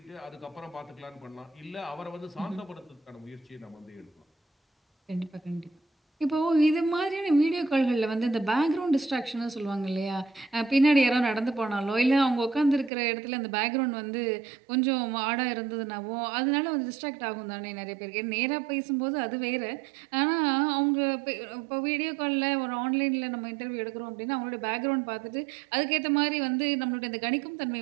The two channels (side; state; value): left; drops out; at 12.9 s